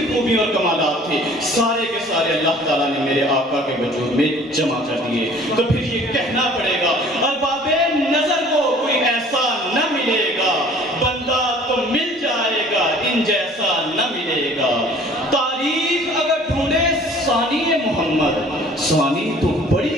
خوبی اور کمالات تھے سارے کے سارے اللہ تعالیٰ نے میرے آقا کے وجود میں جمع کر دیے۔ تو پھر یہ کہنا پڑے گا، ارباب نظر کو کوئی ایسا نہ ملے گا، بندہ تو مل جائے گا ان جیسا نہ ملے گا۔ تاریخ اگر ڈھونڈے ثانی محمد، ثانی تو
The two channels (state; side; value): normal; both; correlation 0.51